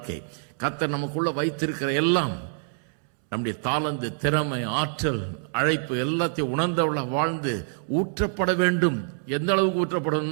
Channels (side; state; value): left; silent; 61 dB below the other